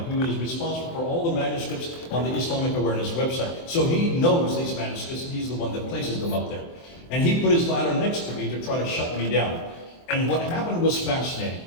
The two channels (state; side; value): late; right; 24 ms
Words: who is responsible for all the manuscripts on the Islamic Awareness website. So he knows these manuscripts, and he's the one that places them up there. And he put his ladder next to me to try to shut me down. And what happened was fascinating,